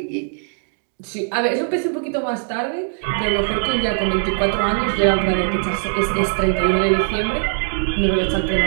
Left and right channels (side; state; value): left; silent; digital silence